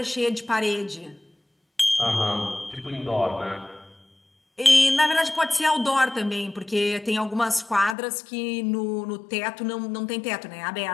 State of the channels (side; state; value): right; drops out; at 8.0 s